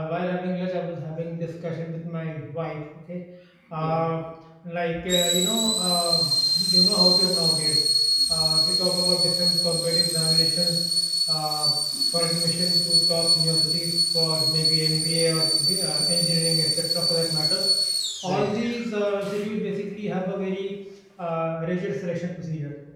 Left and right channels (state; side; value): identical; both; correlation 1.00